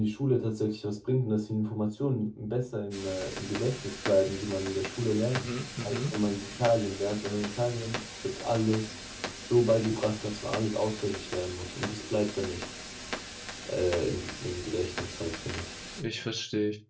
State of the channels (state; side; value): identical; both; correlation 1.00